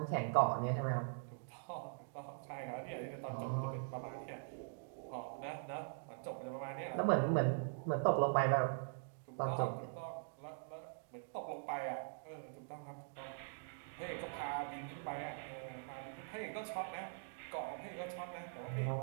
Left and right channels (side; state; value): left; silent; digital silence